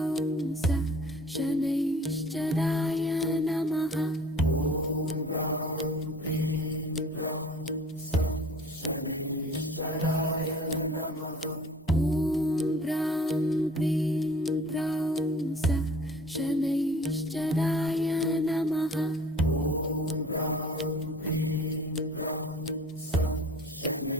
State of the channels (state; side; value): normal; both; correlation 0.49